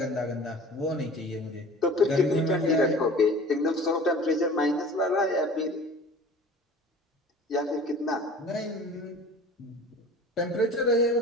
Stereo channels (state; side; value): normal; both; correlation 0.43